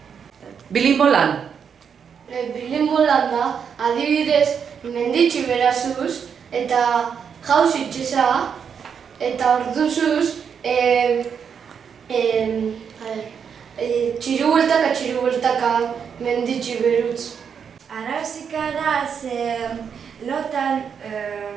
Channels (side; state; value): left; quieter; 7.1 dB